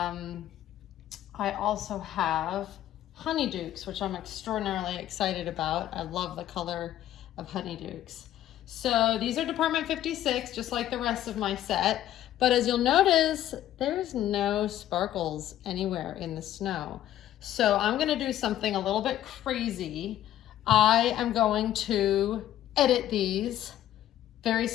also have honeydukes, which I'm extraordinarily excited about. I love the color of honeydukes. So these are Department 56, just like the rest of my set. But as you'll notice, there's no sparkles anywhere in the snow. So I'm gonna do something a little bit crazy. I am going to edit these very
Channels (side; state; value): right; quieter; 12.6 dB